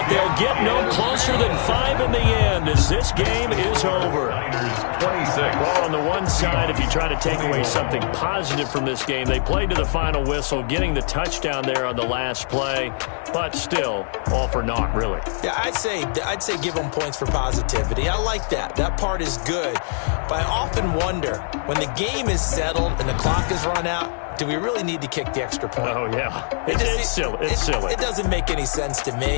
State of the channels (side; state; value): right; silent; 64 dB below the other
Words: they'll get no closer than 5 in the end as this game is over. Well, on the one side, if you try to take away something positive from this game, they played to the final whistle, getting the touchdown there on the last play, but still, all for naught, really. Yeah, I'd say give them points for positivity. I like that. That part is good. But I often wonder, when the game is settled and the clock is run out, do we really need to kick the extra point? Oh, yeah. It's silly. It's silly. It doesn't make any sense to